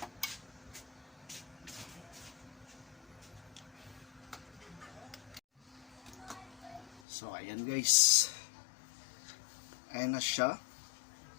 So ayan guys. Ayan na siya.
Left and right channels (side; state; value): right; drops out; at 7.0 s